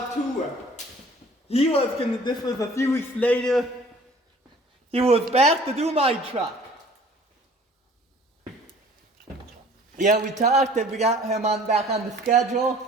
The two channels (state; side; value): normal; both; correlation 0.51